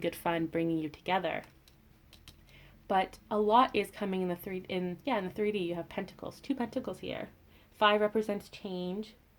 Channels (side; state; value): both; identical; correlation 1.00